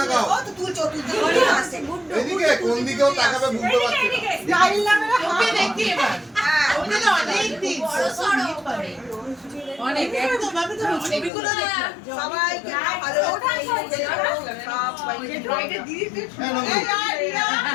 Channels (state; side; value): drops out; right; at 11.3 s